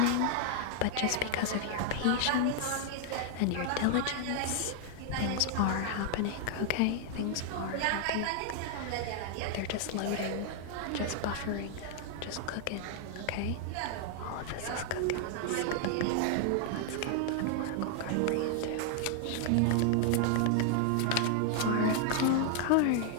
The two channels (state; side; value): different; both; correlation 0.00